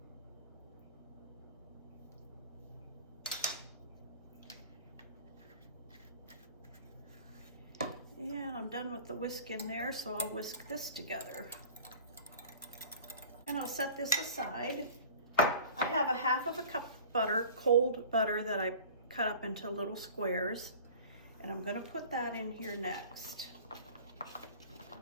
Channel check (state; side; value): inverted; both; correlation -0.42